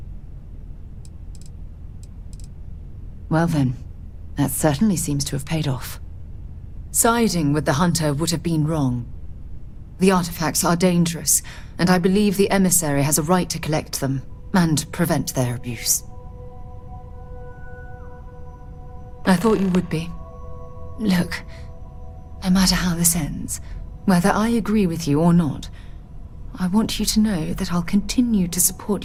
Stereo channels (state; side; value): identical; both; correlation 1.00